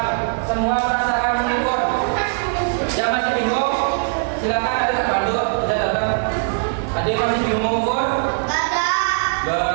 semua merasakan mengukur. Yang masih bingung, silakan ada bantu, bisa datang. Ada yang masih bingung mengukur?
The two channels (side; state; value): left; silent; 60 dB below the other